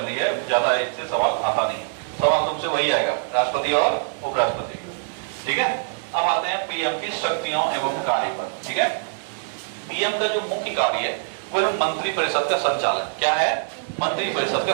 है, ज्यादा इससे सवाल आता नहीं। सवाल तुमसे वही आएगा, राष्ट्रपति और उपराष्ट्रपति। ठीक है, अब आते हैं पीएम की शक्तियों एवं कार्य पर। ठीक है, पीएम का जो मुख्य कार्य है वो है मंत्री परिषद का संचालन। क्या है? मंत्री परिषद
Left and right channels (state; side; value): silent; left; digital silence